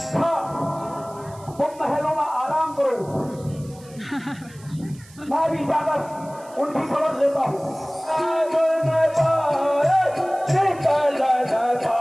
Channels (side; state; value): right; noise; hiss, 24 dB below the sound